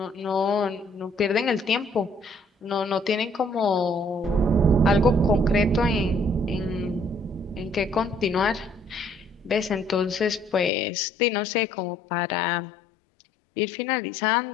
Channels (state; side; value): drops out; right; at 10.7 s